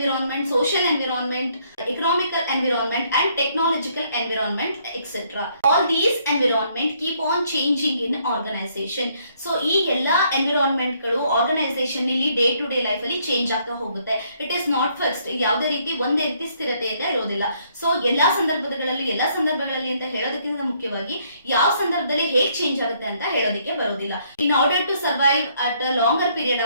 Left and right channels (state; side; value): inverted; both; correlation -0.68